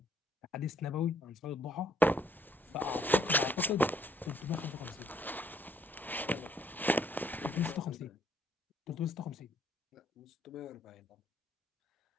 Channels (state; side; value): normal; both; correlation 0.65